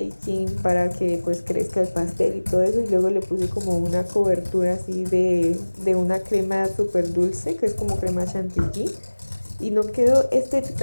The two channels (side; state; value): both; inverted; correlation -1.00